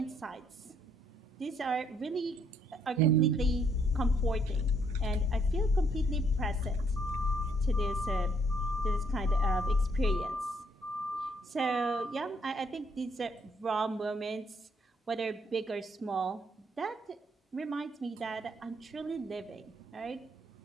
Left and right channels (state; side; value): normal; both; correlation 0.69